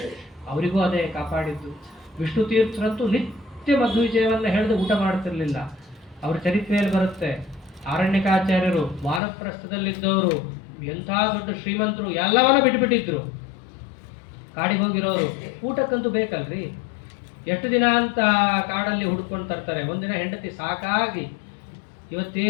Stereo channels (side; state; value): right; drops out; at 9.2 s